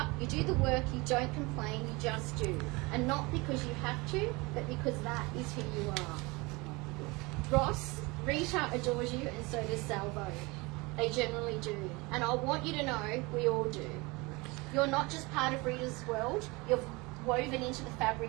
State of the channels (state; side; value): quieter; left; 25.1 dB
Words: you do the work, you don't complain, you just do. And not because you have to, but because that is who you are. Ross, Rita adores you and so does Salvo. They generally do. And I want you to know we all do. You're not just part of Rita's world, you're woven into the